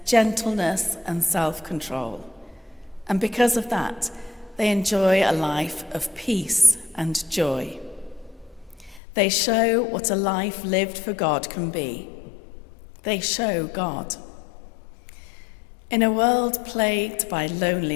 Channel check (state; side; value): drops out; right; at 9.0 s